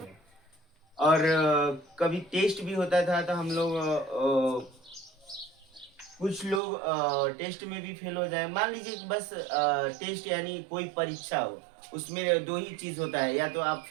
और कभी टेस्ट भी होता था तो हम लोग कुछ लोग टेस्ट में भी फेल हो जाए। मान लीजिए कि बस टेस्ट यानी कोई परीक्षा हो, उसमें दो ही चीज होता है, या तो आप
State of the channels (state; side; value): drops out; left; at 6.6 s